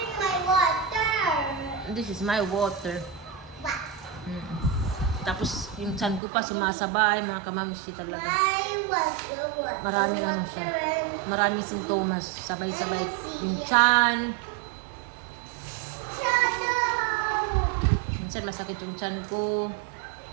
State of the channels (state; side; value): drops out; left; at 6.2 s